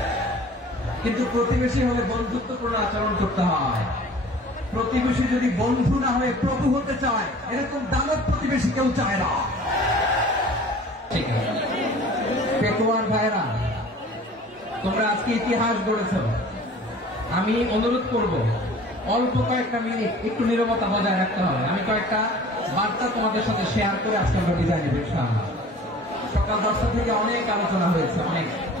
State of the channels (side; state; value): both; normal; correlation 0.46